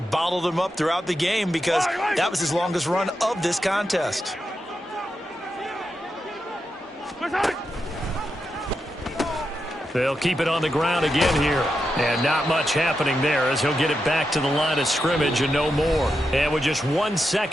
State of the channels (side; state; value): both; normal; correlation 0.87